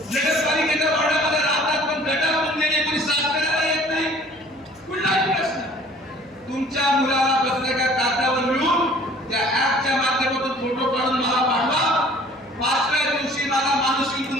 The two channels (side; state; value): left; noise; hum, 29 dB below the sound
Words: नगरपालिकेच्या वॉर्डामध्ये राहतात पण गटार पुंजने कोणी साफ करायला येत नाही, कुठलाही प्रश्न तुमच्या मुलाला पत्रकार कागदावर मिळून त्या ऍपच्या माध्यमातून फोटो काढून मला पाठवा. 5व्या दिवशी मला माणूस येऊन